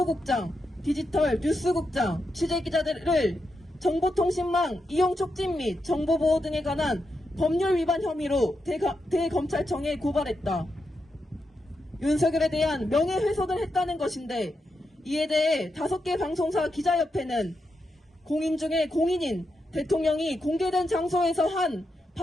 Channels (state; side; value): normal; both; correlation 0.85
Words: 디지털 뉴스국장, 취재기자들을 정보통신망 이용 촉진 및 정보보호 등에 관한 법률 위반 혐의로 대검찰청에 고발했다. 윤석열에 대한 명예훼손을 했다는 것인데 이에 대해 5개 방송사 기자협회는 공인 중에 공인인 대통령이 공개된 장소에서 한